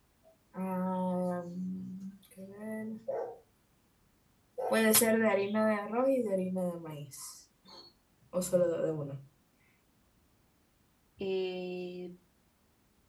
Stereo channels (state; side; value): identical; both; correlation 1.00